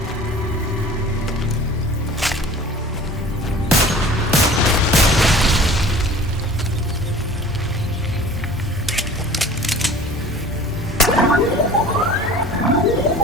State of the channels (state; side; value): normal; both; correlation 0.45